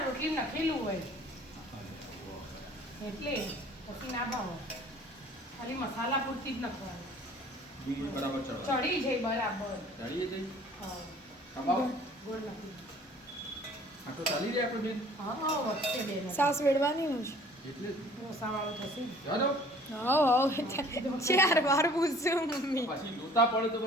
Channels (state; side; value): normal; both; correlation 0.52